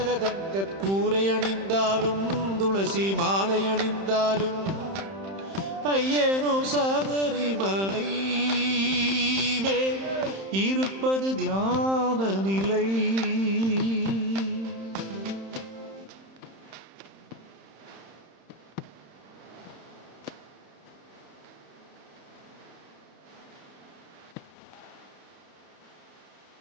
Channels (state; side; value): late; left; 31 ms